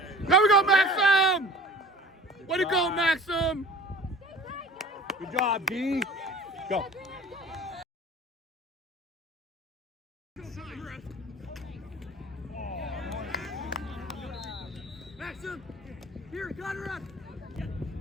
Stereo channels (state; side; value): normal; both; correlation 0.43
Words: There we go, Maxim. Way to go, Maxim. Good job, D. Go. Maxim, here, cut her up.